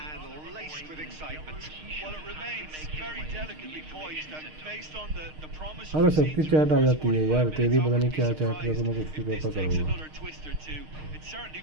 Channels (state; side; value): late; left; 6.5 ms